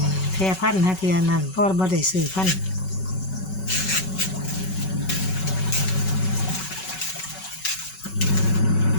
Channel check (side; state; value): right; late; 5.3 ms